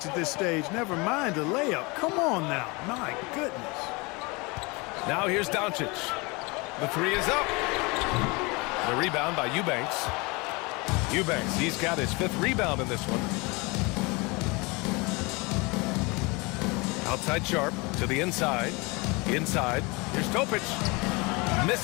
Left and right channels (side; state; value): right; quieter; 26.8 dB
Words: at this stage. Never mind a layup. Come on now. My goodness. Now here's Doncic. The 3 is up. The rebound by Eubanks. Eubanks, he's got his 5th rebound in this one. Outside Sharp to the inside. Inside. Here's Topic.